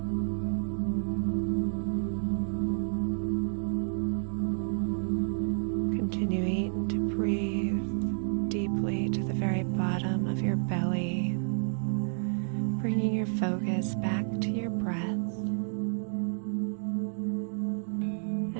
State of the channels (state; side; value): silent; left; digital silence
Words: Continuing to breathe deeply to the very bottom of your belly, bringing your focus back to your breath.